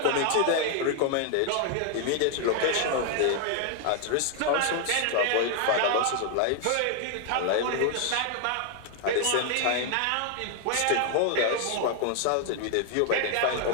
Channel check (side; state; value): both; different; correlation 0.00